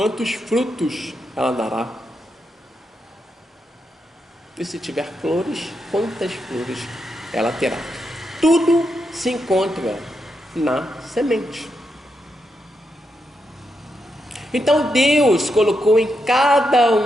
frutos ela dará? E se tiver flores, quantas flores ela terá? Tudo se encontra na semente. Então Deus colocou em cada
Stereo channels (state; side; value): normal; both; correlation 0.84